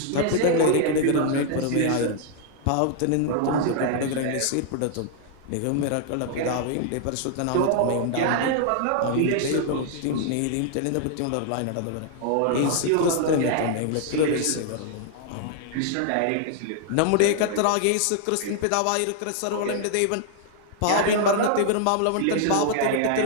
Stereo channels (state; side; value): different; both; correlation 0.00